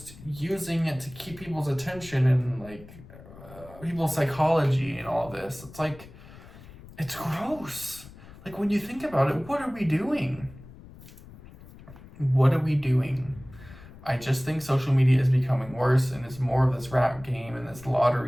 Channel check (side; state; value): left; noise; rumble, 19 dB below the sound